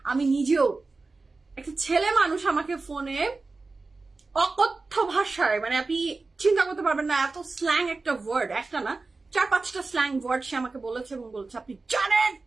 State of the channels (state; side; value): quieter; left; 3.7 dB